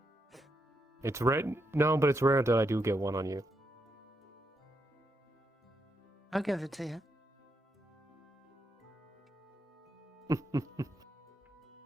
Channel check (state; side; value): normal; both; correlation 0.81